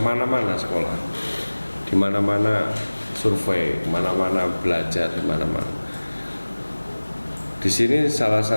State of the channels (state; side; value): inverted; both; correlation -1.00